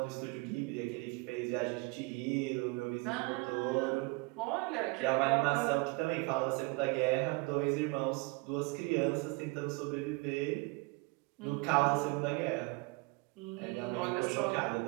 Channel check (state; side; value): quieter; left; 27.5 dB